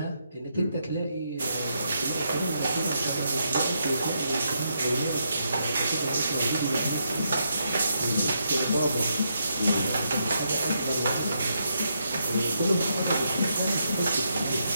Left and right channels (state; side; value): inverted; both; correlation -0.80